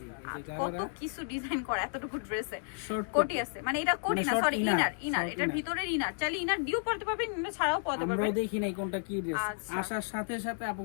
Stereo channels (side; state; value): right; silent; digital silence